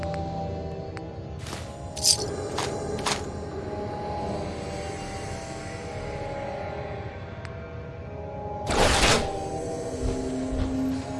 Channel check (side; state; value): both; identical; correlation 1.00